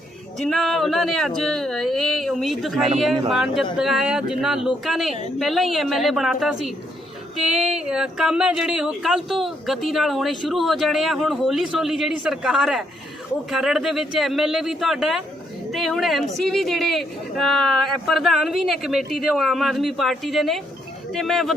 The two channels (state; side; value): normal; both; correlation 0.74